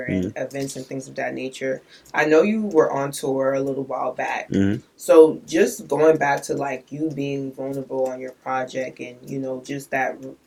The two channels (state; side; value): identical; both; correlation 1.00